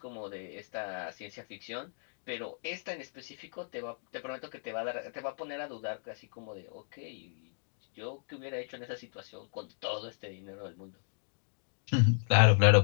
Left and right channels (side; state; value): right; silent; digital silence